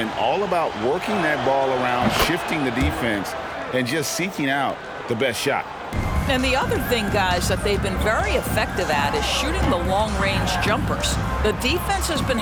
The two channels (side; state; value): both; identical; correlation 1.00